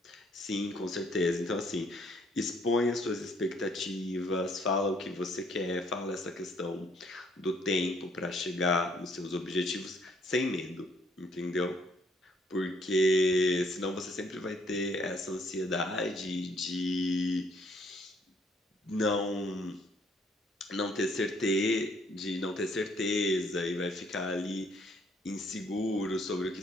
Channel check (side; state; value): both; normal; correlation 0.65